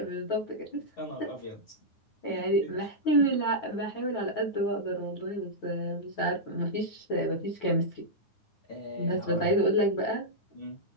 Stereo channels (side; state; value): right; late; 9.6 ms